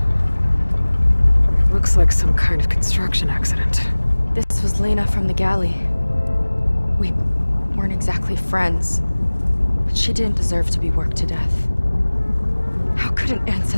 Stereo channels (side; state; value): both; inverted; correlation -1.00